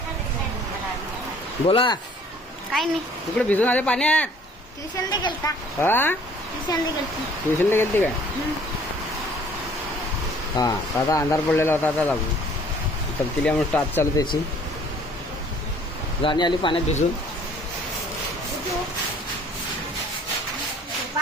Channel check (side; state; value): both; normal; correlation 0.56